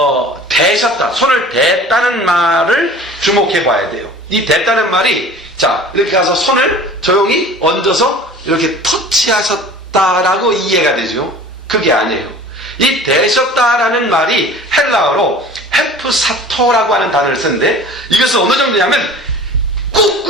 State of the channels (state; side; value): normal; both; correlation 0.43